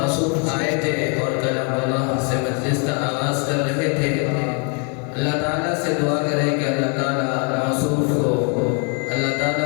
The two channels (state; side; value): quieter; right; 37.6 dB